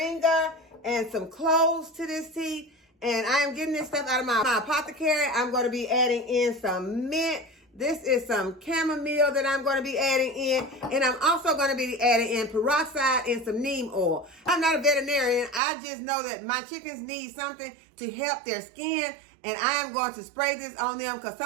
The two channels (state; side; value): drops out; left; at 15.6 s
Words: and some cloves to this tea, and I am getting this stuff out of my apothecary. I'm going to be adding in some mint. This is some chamomile that I'm going to be adding in, and I'm also going to be adding in peroxide and some neem oil. I'm not a veterinarian. I just know that my chickens need something to help their skin, and I am going to spray this on them because